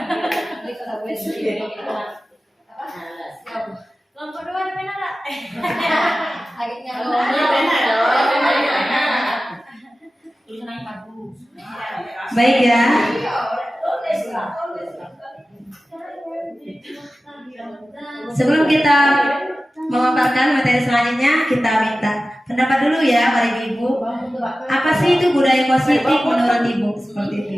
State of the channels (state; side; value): normal; both; correlation 0.95